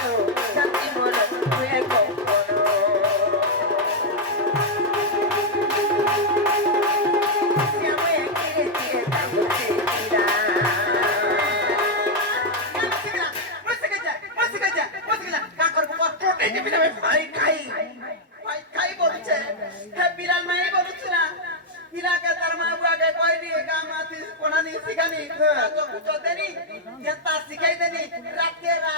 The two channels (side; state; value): both; normal; correlation -0.01